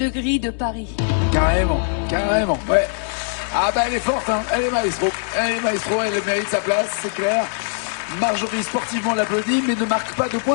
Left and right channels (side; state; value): right; silent; 65 dB below the other